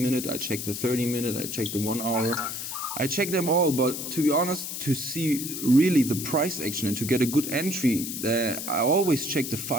I check the 30 minute, I check the 1 hour. I check them all, but to be honest, to see really the price action and to get a good entry, I always check the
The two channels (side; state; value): left; noise; hiss, 6 dB below the sound